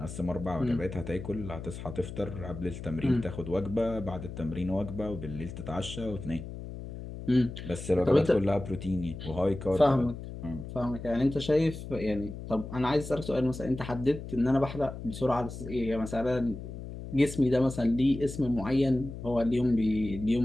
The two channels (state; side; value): noise; left; hum, 10 dB below the sound